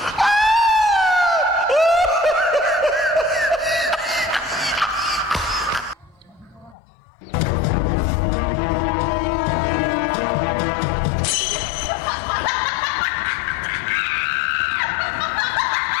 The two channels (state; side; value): drops out; right; at 6.8 s